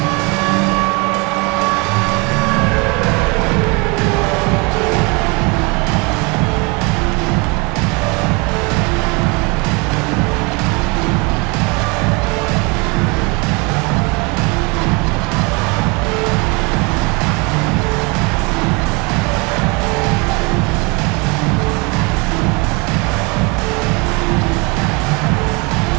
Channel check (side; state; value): left; quieter; 29.0 dB